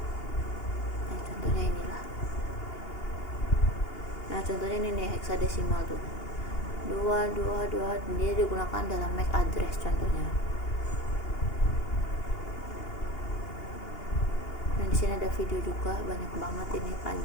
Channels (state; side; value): late; right; 2.8 ms